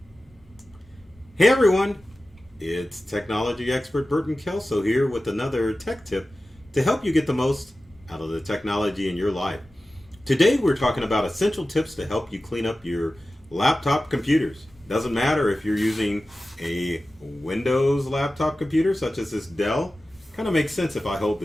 everyone, it's technology expert Burton Kelso here with another tech tip to help you get the most out of the technology in your life. Today we're talking about essential tips to help you clean up your laptop computers. Doesn't matter if you're using a Windows laptop computer such as this Dell. Kind of makes sense if I hold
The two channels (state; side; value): normal; both; correlation 0.95